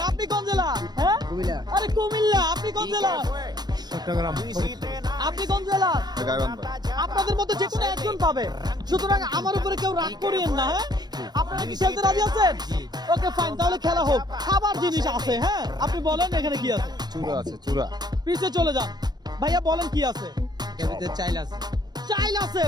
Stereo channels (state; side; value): late; left; 0.20 ms